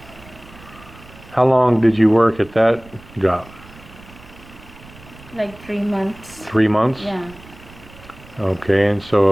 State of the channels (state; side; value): noise; right; rumble, 21 dB below the sound